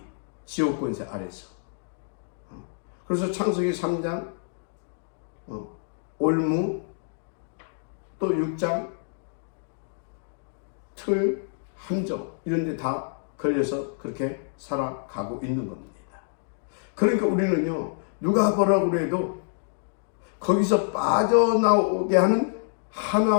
지옥 권세 아래서. 그래서 창세기 3장, 올무, 또 6장, 틀, 함정 이런 데 다 걸려서 그렇게 살아가고 있는 겁니다. 그러니까 우리는요, 누가 뭐라고 그래도 거기서 빠져나오게 하는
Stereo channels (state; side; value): silent; right; digital silence